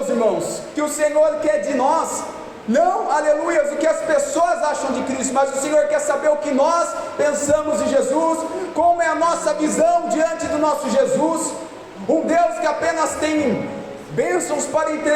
irmãos, que o Senhor quer de nós, não, aleluias, o que as pessoas acham de Cristo, mas o Senhor quer saber o que nós pensamos de Jesus, Como é a nossa visão diante do nosso Jesus? Um Deus que apenas tem bênçãos para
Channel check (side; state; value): both; identical; correlation 1.00